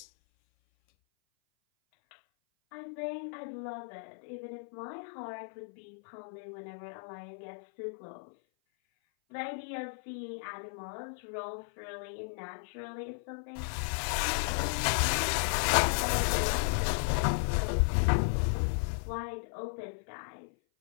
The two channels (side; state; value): right; silent; 55 dB below the other